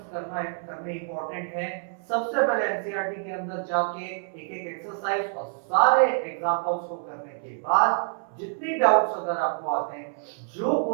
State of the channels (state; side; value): silent; left; 60 dB below the other